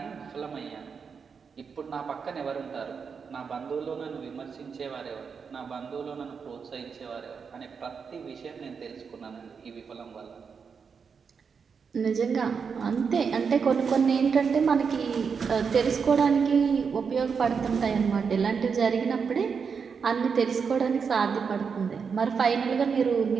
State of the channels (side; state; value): left; quieter; 6.0 dB